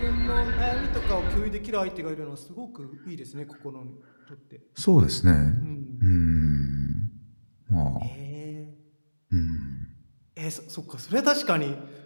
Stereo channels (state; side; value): inverted; both; correlation -1.00